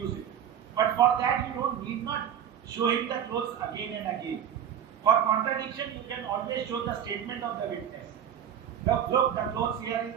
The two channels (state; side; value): quieter; left; 9.4 dB